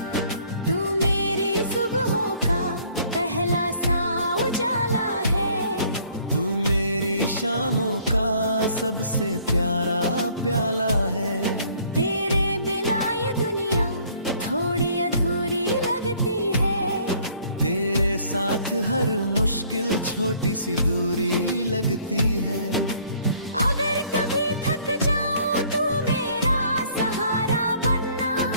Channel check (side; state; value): both; inverted; correlation -0.59